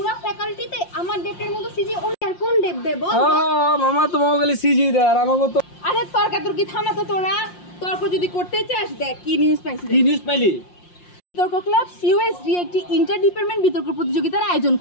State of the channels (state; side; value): late; right; 5.6 ms